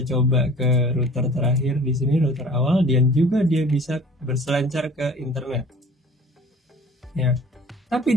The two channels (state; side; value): normal; both; correlation 0.47